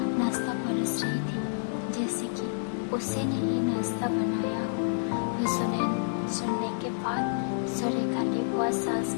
नाश्ता परस रही थी, जैसे कि उसी ने ही नाश्ता बनाया हो। यह सुनने के बाद सुरेखा ने बुआ सास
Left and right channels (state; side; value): silent; right; 57 dB below the other